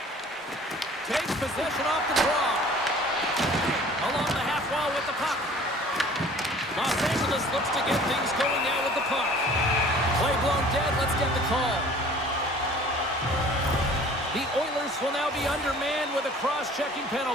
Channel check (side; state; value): both; normal; correlation 0.49